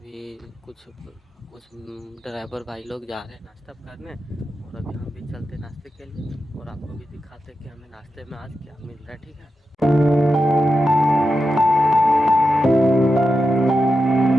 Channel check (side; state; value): both; normal; correlation 0.89